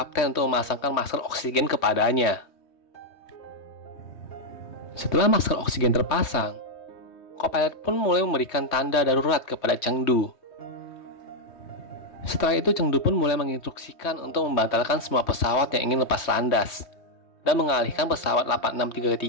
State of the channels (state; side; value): late; right; 3.2 ms